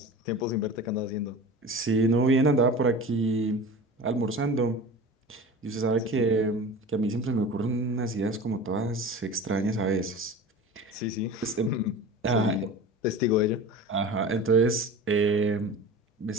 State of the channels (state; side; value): normal; both; correlation 0.35